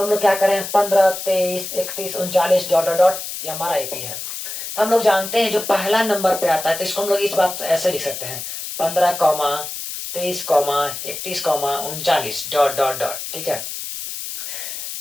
हम लोग क्या करें 15 23 31 39 डॉट डॉट डॉट, ये हमारा एपी है। तो हम लोग जानते हैं जो पहला नंबर पे आता है तो इसको हम लोग इस बात ऐसे लिख सकते हैं 15 23 31 39 डॉट डॉट डॉट। ठीक है,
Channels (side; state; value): left; noise; hiss, 7 dB below the sound